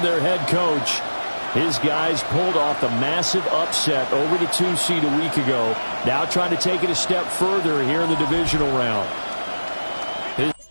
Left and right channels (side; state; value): both; inverted; correlation -1.00